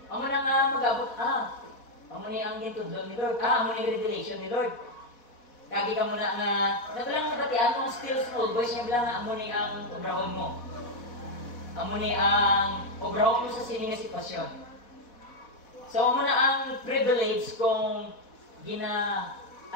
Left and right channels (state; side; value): late; right; 4.1 ms